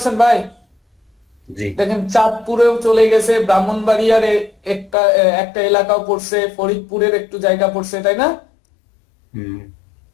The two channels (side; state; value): right; drops out; at 5.0 s